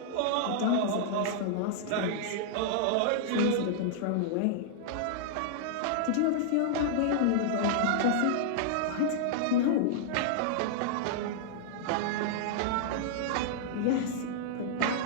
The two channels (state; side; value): different; both; correlation -0.01